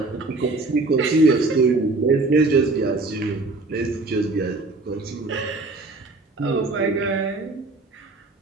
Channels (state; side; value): quieter; left; 3.3 dB